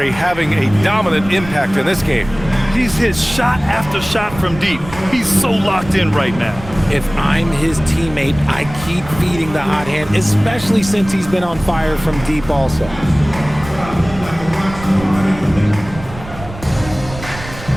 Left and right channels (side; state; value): right; noise; rumble, 14 dB below the sound